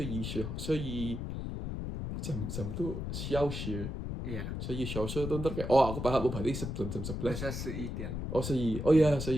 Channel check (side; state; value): left; noise; rumble, 4 dB below the sound